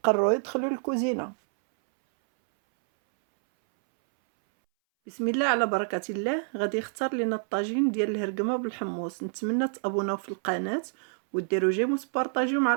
قرروا يدخلوا الكوزينة. بسم الله على بركة الله. غادي يختار لنا الطاجين ديال الهرقمة بالحمص. نتمنى تابوناو في القناة وديروا جيم وتبارطاجيو مع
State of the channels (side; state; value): left; silent; 60 dB below the other